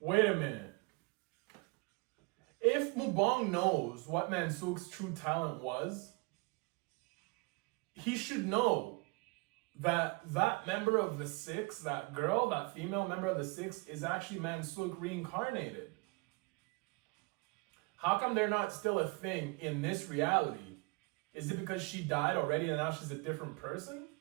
If Mubong knows what Mansook's true talent was, he should know that member of the Six, that girl, that female member of the Six, is actually Mansook reincarnated. How come they're not still a thing in this reality? Is it because she died already and now she's a different person?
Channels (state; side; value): quieter; left; 28.2 dB